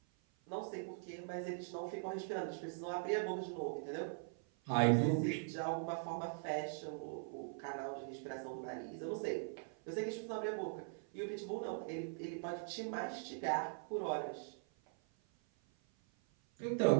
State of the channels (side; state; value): left; silent; 50 dB below the other